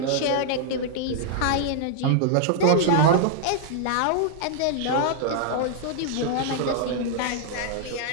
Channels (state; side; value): different; both; correlation -0.01